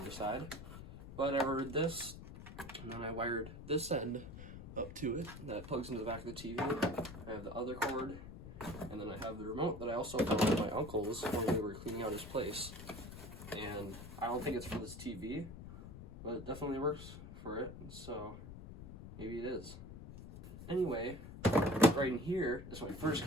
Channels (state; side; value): noise; left; rumble, 12 dB below the sound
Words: side. But I ordered this, and then I wired this end up to it. That plugs into the back of the TV. I have the other cord, and then I have the remote that I also found at my uncle's when we were cleaning out his place. And I don't think it's for this TV, but it definitely works for it, so maybe it is. Anyway, right in here is my first